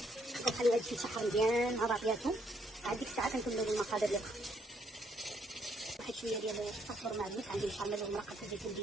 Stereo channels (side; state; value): both; normal; correlation 0.71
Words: كنخليو هادشي يتشحر مزيان مع بعضياتهم. عاد ديك الساعه كنكملوا المقادير ديالها. واحد شويه ديال الفلفل معدنوس عندي مشرمل ومرقه الزيت